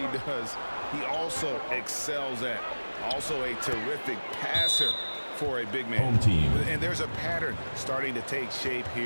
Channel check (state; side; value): inverted; both; correlation -1.00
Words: does, he also excels at. Also a terrific passer for a big man. Home team. And there's a pattern starting to take shape